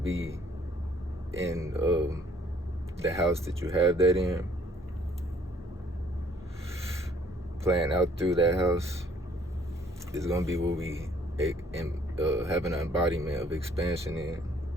be in the house that you have that in, playing out through that house is gonna be what we have an embodiment of expansion in,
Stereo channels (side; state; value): both; normal; correlation 0.61